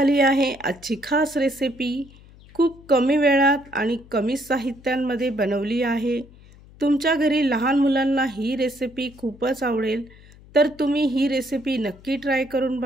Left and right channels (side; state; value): left; noise; hum, 23 dB below the sound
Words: आहे आजची खास रेसिपी. खूप कमी वेळात आणि कमी साहित्यांमध्ये बनवली आहे. तुमच्या घरी लहान मुलांना ही रेसिपी खूपच आवडेल, तर तुम्ही ही रेसिपी नक्की ट्राय करून